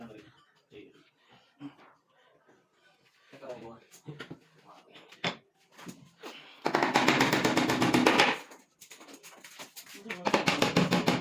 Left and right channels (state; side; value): identical; both; correlation 1.00